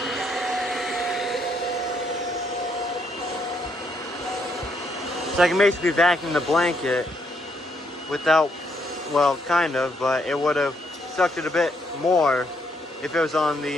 So I can basically vacuum the blanket without, well, kind of, but it would have sucked it a bit more if it was on the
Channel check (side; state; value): both; normal; correlation 0.74